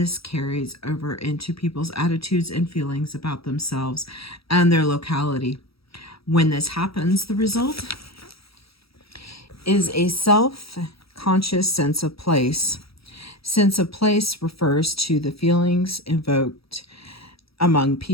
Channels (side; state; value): right; late; 0.76 ms